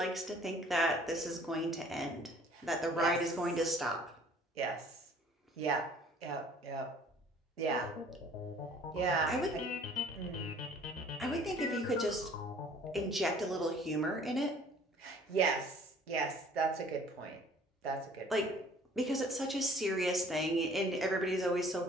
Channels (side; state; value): both; normal; correlation 0.53